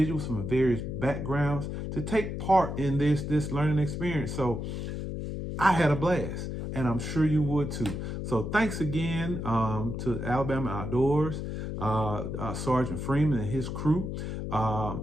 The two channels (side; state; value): left; noise; hum, 5 dB below the sound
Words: from various backgrounds to take part in this learning experience. So I had a blast, and I'm sure you would too. So thanks again to Alabama Outdoors, Sergeant Freeman and his crew